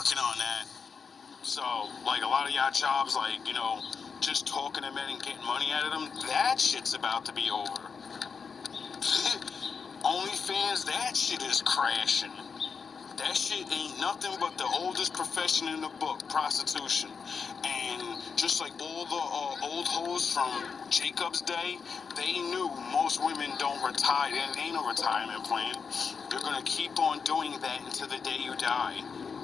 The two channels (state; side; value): quieter; right; 5.7 dB